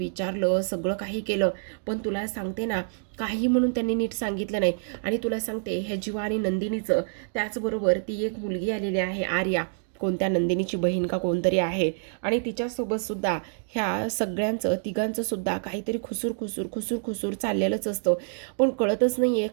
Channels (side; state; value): left; silent; digital silence